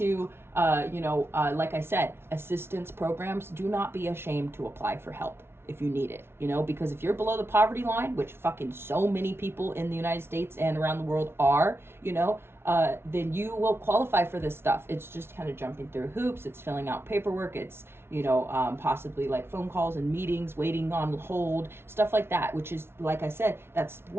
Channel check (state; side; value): late; left; 0.12 ms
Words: like I said, assistance programs, do not be ashamed to apply for help if you need it, you know, because if you're below the poverty line, which fucking so many people in the United States and around the world are, you know, then you will qualify for this stuff. It's just kind of jumping through hoops. It's filling out paperwork. It's, you know, possibly like phone calls and meetings, waiting on hold, stuff like that, which is, like I said, that's